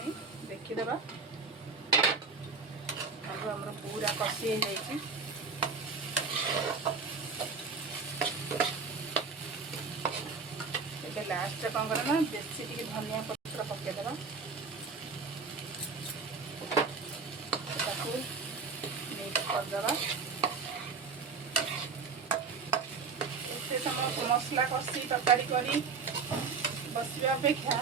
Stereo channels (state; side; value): quieter; left; 4.8 dB